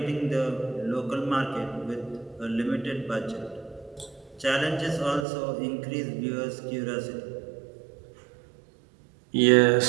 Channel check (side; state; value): left; drops out; at 5.2 s